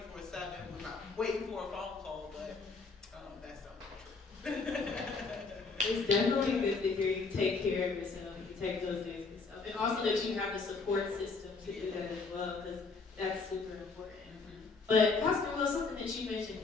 waiting for a phone call, but that's not true. It's definitely good to hear you take care of yourself, you take those days for yourself, and also that you have the support system to do that as well, because that's super important. But Pastor Will, something that you mentioned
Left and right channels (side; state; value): right; quieter; 4.3 dB